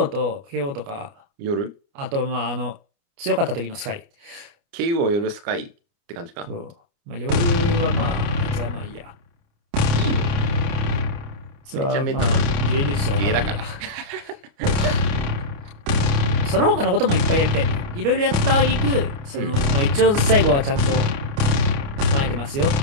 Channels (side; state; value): left; late; 29 ms